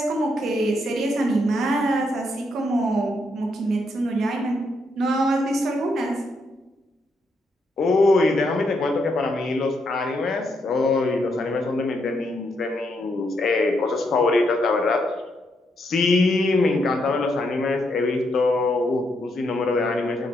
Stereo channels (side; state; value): both; normal; correlation 0.78